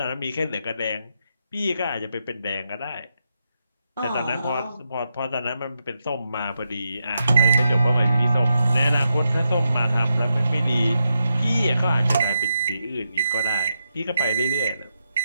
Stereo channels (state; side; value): inverted; both; correlation -0.85